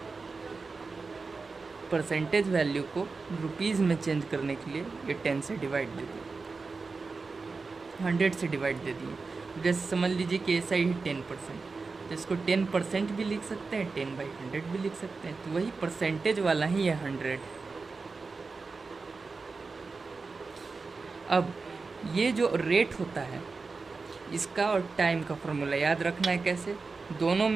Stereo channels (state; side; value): quieter; left; 4.3 dB